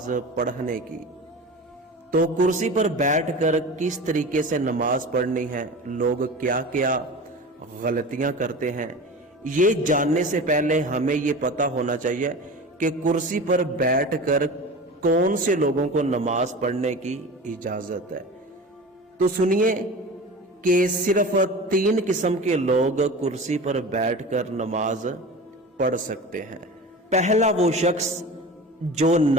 पढ़ने की, तो कुर्सी पर बैठकर किस तरीके से नमाज पढ़नी है, लोग क्या क्या गलतियां करते हैं, ये जानने से पहले हमें ये पता होना चाहिए कि कुर्सी पर बैठकर कौन से लोगों को नमाज पढ़ने की इजाजत है। तो सुनिए कि सिर्फ 3 किस्म के लोग कुर्सी पर बैठकर नमाज पढ़ सकते हैं। पहला वो शख्स जो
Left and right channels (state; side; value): normal; both; correlation 0.33